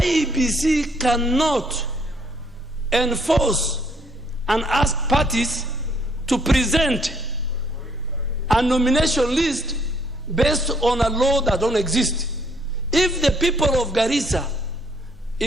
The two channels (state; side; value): normal; both; correlation 0.67